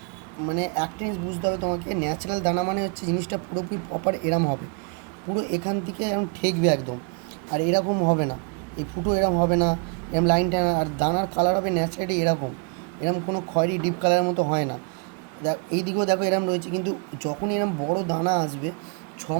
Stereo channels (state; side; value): quieter; left; 35.2 dB